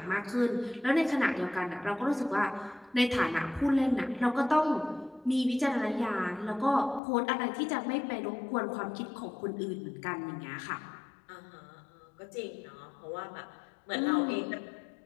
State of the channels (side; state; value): right; drops out; at 7.0 s